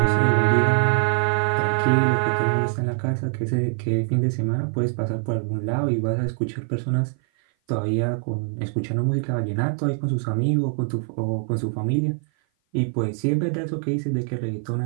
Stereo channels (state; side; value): silent; left; 56 dB below the other